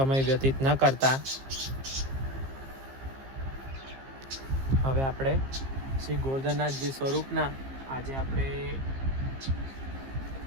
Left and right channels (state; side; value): late; left; 15 ms